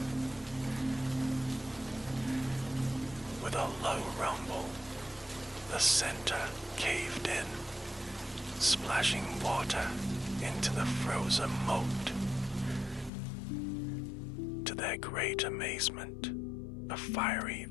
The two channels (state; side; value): drops out; right; at 13.1 s